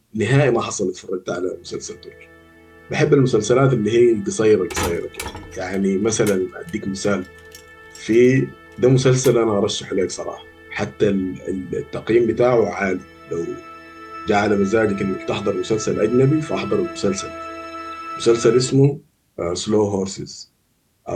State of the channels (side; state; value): both; identical; correlation 1.00